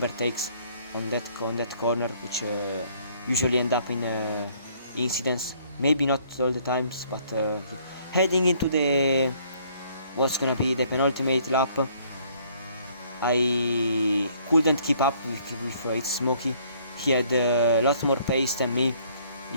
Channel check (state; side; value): inverted; both; correlation -0.62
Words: on that corner, which usually end up in incidents. Maybe not all the times, but heading into the what's gonna be the penultimate lap, I couldn't keep up with its Smokey. He had a lot more pace than me,